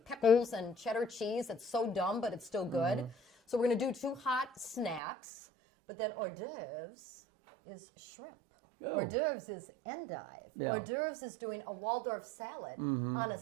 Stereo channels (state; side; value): drops out; left; at 5.0 s